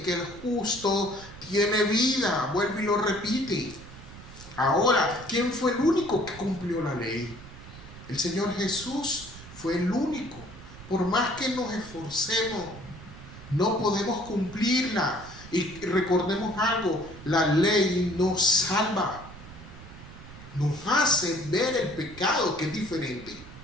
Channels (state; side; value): noise; right; rumble, 16 dB below the sound